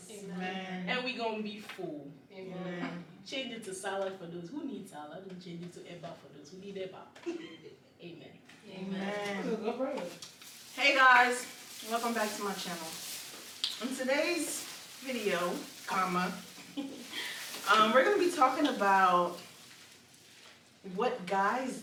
Amen. And we're going to be full. Amen. Change it to salad for those who need salad, and change it to eba for those who need eba. Amen. Amen. Hey guys, welcome back to my channel. In today's video, we're going to be talking about what guys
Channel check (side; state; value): both; identical; correlation 1.00